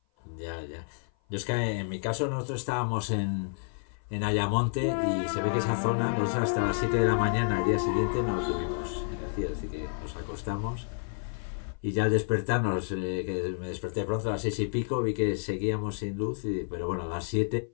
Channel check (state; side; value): silent; right; 56 dB below the other